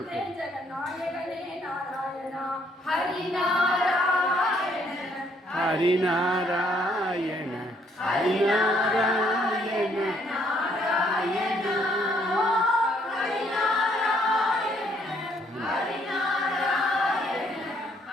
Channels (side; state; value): both; normal; correlation 0.67